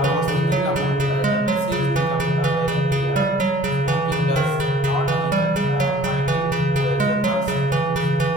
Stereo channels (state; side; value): normal; both; correlation 0.54